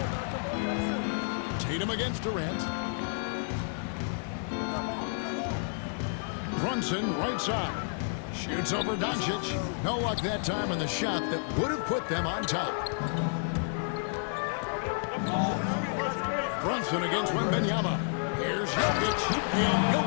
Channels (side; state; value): right; silent; digital silence